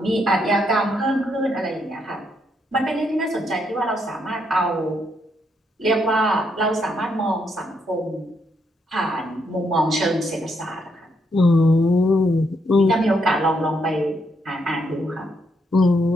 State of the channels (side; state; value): both; normal; correlation 0.76